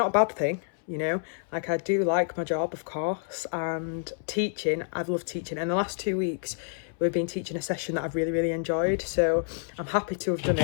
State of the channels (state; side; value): silent; right; 59 dB below the other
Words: a bad thing. You know, like I do like my job, of course, and teaching, I've loved teaching. And the last 2 weeks, we've been teaching a session that I've really enjoyed. So I'm happy to have done